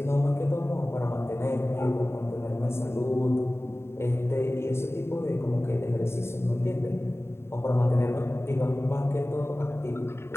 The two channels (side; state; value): right; late; 0.12 ms